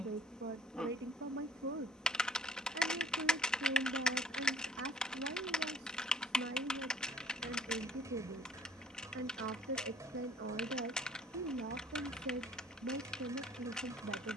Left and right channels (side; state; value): both; normal; correlation 0.56